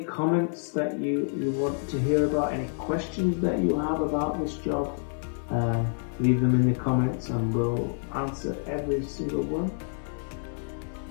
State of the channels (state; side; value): silent; right; 59 dB below the other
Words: comments that you want to hear about, any questions that you have about this job. Leave them in the comments and we'll answer every single one.